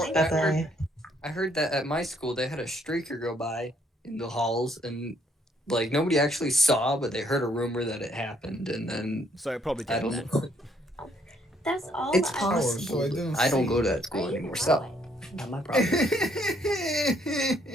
that at my school they had a streaker go by in the halls, and like nobody actually saw, but they heard a rumor that it happened, and then so it probably did. I don't know. That's all. It's I possible. I don't go to that school anymore, so not my problem.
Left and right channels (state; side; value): normal; both; correlation 0.68